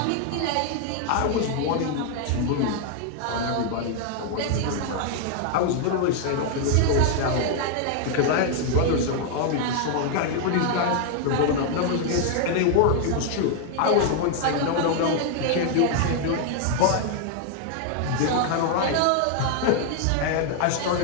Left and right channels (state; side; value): different; both; correlation 0.00